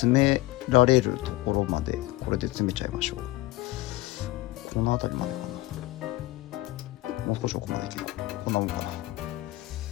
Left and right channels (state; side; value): quieter; right; 18.3 dB